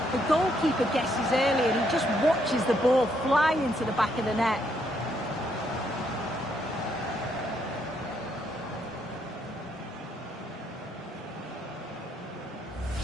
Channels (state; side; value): normal; both; correlation 0.74